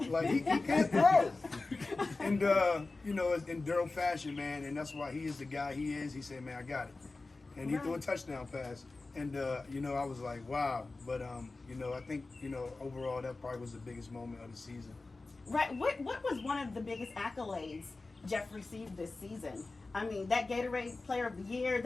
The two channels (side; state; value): right; quieter; 3.5 dB